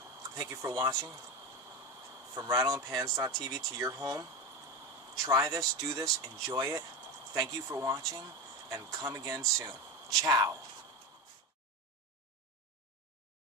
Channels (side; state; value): both; normal; correlation 0.20